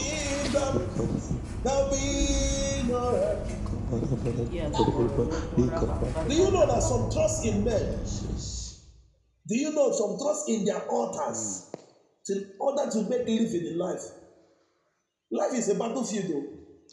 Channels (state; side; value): identical; both; correlation 1.00